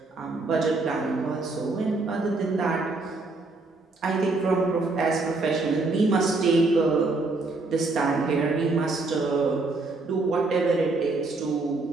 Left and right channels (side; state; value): left; quieter; 3.4 dB